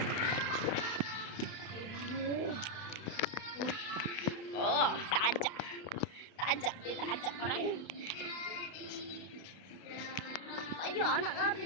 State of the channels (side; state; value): right; late; 32 ms